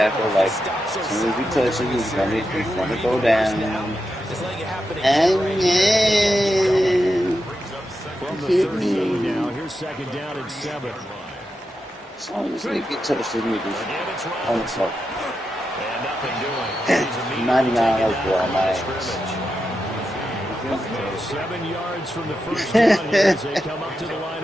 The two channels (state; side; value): normal; both; correlation 0.87